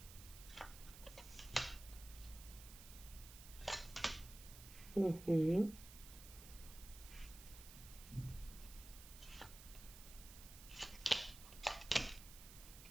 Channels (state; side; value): noise; right; hiss, 15 dB below the sound